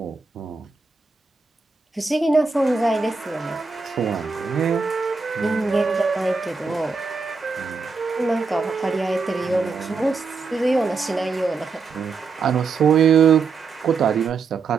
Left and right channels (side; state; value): left; quieter; 4.6 dB